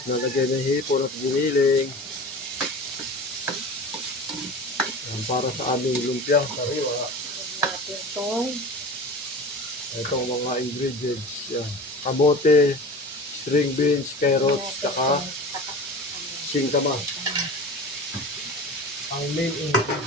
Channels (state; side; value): normal; both; correlation 0.34